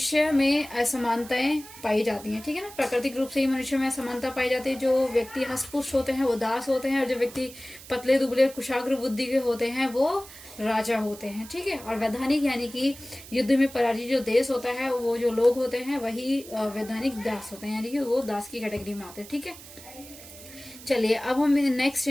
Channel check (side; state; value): right; noise; hiss, 17 dB below the sound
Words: में असमानताएं पाई जाती हैं। ठीक है ना, प्राकृतिक रूप से ही मनुष्य में असमानता पाई जाती है। जो व्यक्ति हष्टपुष्ट होते हैं वो दास होते हैं, और जो व्यक्ति पतले दुबले कुशाग्र बुद्धि के होते हैं वो राजा होते हैं। ठीक है, और वैधानिक यानी कि युद्ध में पराजित जो देश होता है, वो जो लोग होते हैं वही वैधानिक दास होते हैं, यानी कि वो दास की कैटेगरी में आते हैं। ठीक है, चलिए अब हम नेक्स्ट